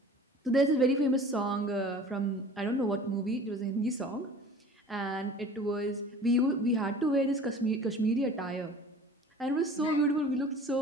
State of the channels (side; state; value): both; normal; correlation 0.44